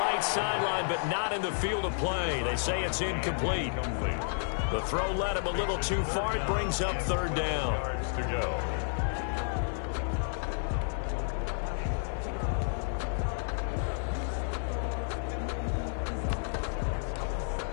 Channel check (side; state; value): right; silent; 57 dB below the other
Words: right sideline, but not in the field of play. They say it's incomplete. The throw led him a little too far. It brings up third down. Yards to go.